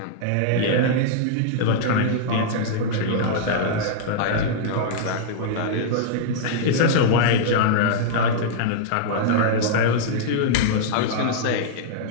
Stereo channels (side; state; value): both; different; correlation -0.02